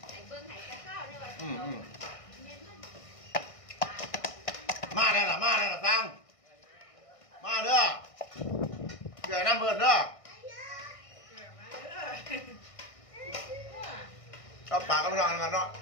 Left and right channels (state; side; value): late; right; 1.6 ms